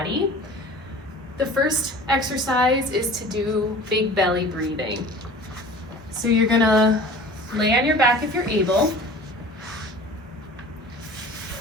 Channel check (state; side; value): normal; both; correlation 0.42